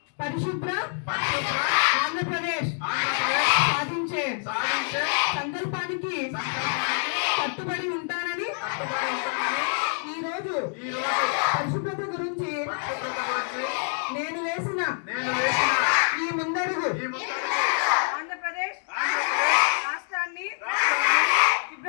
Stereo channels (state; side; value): silent; right; 58 dB below the other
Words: పరిశుభ్ర ఆంధ్రప్రదేశ్ సాధించే సంకల్పానికి కట్టుబడి ఉంటానని ఈరోజు పరిశుభ్రత గురించి నేను వేసిన ఈ ముందడుగు ఆంధ్రప్రదేశ్ రాష్ట్రాన్ని